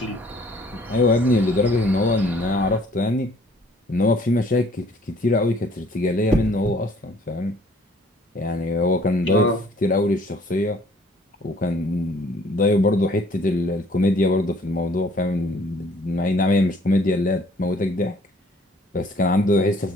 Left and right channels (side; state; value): both; normal; correlation 0.58